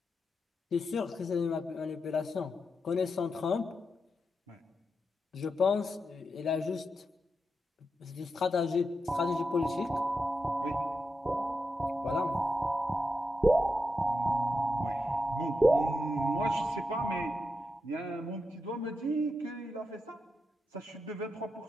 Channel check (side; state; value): both; normal; correlation 0.87